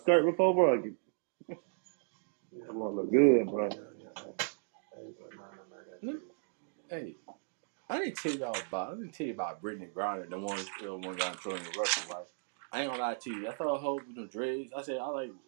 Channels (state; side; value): silent; left; digital silence